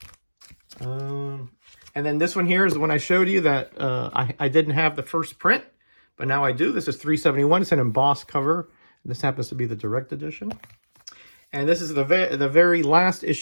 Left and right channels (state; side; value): inverted; both; correlation -1.00